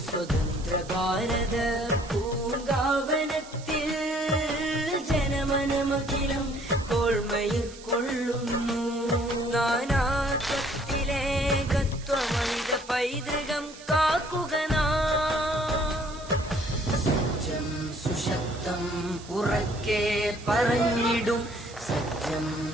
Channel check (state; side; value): noise; right; hiss, 18 dB below the sound